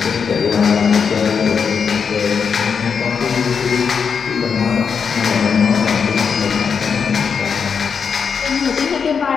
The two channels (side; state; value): right; quieter; 6.3 dB